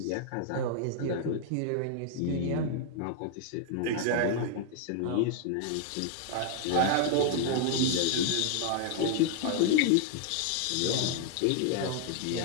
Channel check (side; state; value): both; different; correlation 0.00